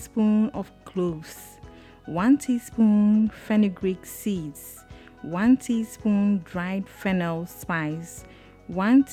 of cloves, 1 teaspoon fenugreek seeds, 1 teaspoon dried fennel spice, 1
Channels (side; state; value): both; identical; correlation 1.00